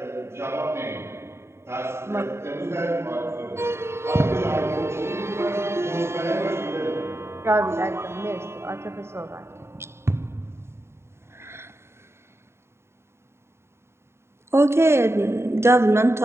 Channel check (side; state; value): left; late; 0.12 ms